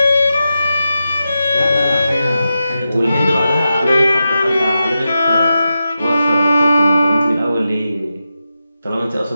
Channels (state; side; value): inverted; both; correlation -0.90